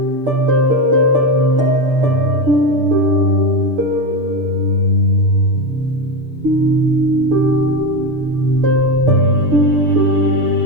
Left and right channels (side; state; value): left; late; 6.9 ms